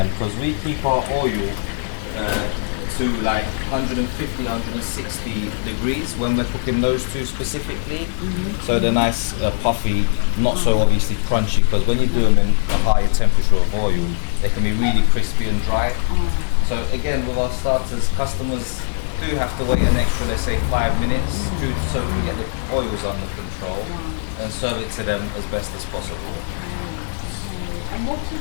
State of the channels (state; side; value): silent; right; 65 dB below the other